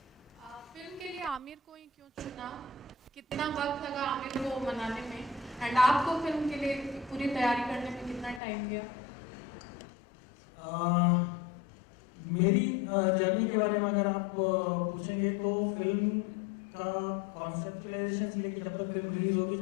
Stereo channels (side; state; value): right; drops out; at 8.4 s